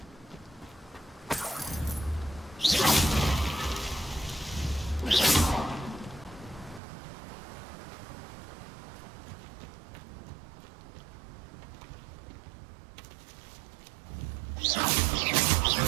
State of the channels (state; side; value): drops out; left; at 6.8 s